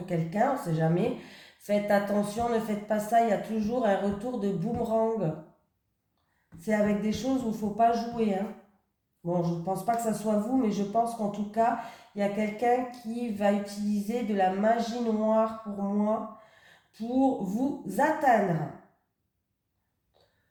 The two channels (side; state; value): both; identical; correlation 1.00